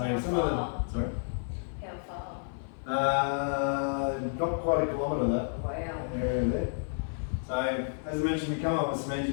How some of far? the, sorry? How far? Not quite a kilometre that Wow. area there. So as I mentioned, we come up with some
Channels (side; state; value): right; silent; 57 dB below the other